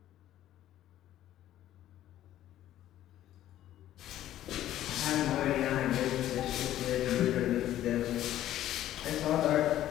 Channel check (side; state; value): right; quieter; 12.8 dB